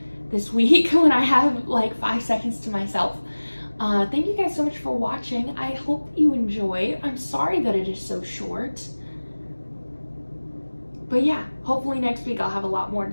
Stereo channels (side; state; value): both; inverted; correlation -1.00